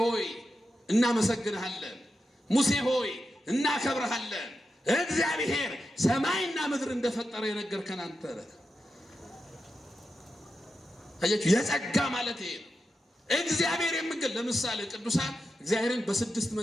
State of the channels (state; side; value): normal; both; correlation 0.89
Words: እናመሰግንሃለን፣ ሙሴ ሆይ እናከብርሃለን። እግዚአብሔር ሰማይና ምድር እንደፈጠረ የነገርከን አንተ ነህ። አያችሁ፣ የጸጋ ማለት ይሄ ነው። እግዚአብሔር የሚገል ለምሳሌ ቅዱሳን እግዚአብሔርን በስድስት